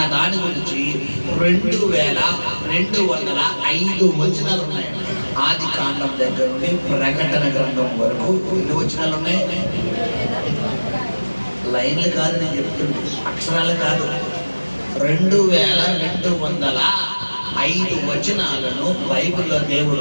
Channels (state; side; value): inverted; both; correlation -1.00